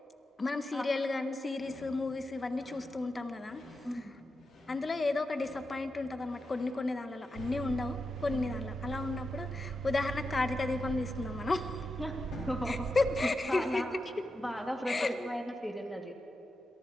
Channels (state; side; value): normal; both; correlation 0.88